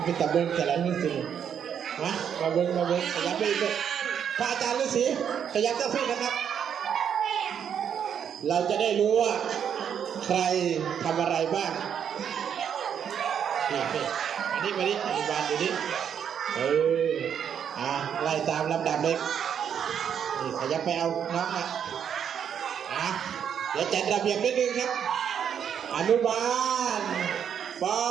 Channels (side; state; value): left; quieter; 8.3 dB